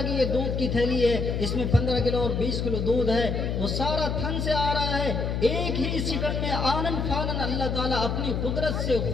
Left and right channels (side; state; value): left; noise; hum, 1 dB below the sound